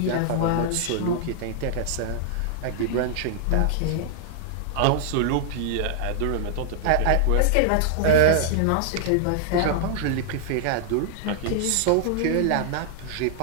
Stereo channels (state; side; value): different; both; correlation -0.01